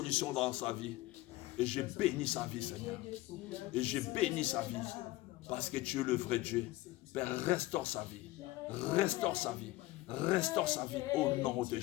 dans sa vie. Et je bénis sa vie, Seigneur. Et je bénis sa vie. Parce que tu es le vrai Dieu. Père, restaure sa vie. Restaure sa vie. Restaure sa vie au nom de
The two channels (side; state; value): right; quieter; 18.3 dB